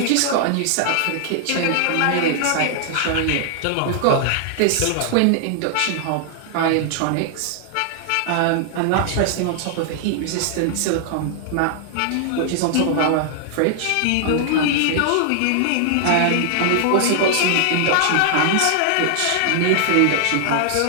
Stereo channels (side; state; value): both; different; correlation -0.01